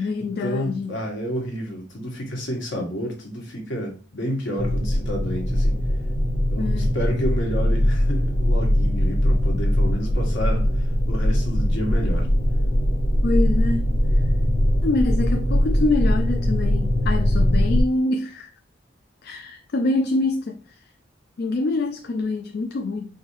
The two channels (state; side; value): normal; both; correlation 0.88